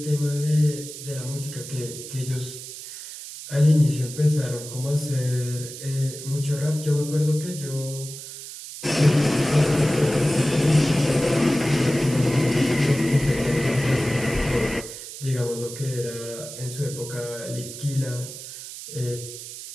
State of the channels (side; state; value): right; noise; hiss, 11 dB below the sound